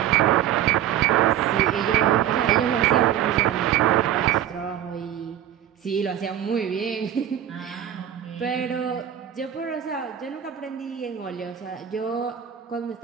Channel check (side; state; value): left; quieter; 10.7 dB